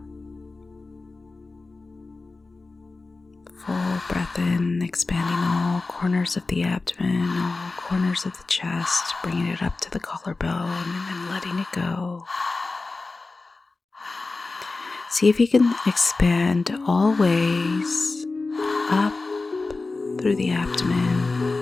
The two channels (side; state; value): right; quieter; 3.6 dB